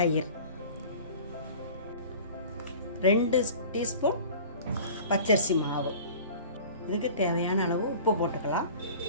2 டீஸ்பூன் பச்சரிசி மாவு, இதுக்கு தேவையான அளவு உப்பு போட்டுக்கலாம்.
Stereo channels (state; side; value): inverted; both; correlation -0.42